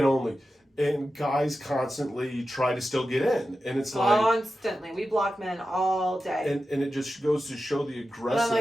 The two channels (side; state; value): both; normal; correlation 0.92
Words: only. And guys constantly try to still get in. And it's constantly. We block men all day. And it just goes to show the aggressive. And I'm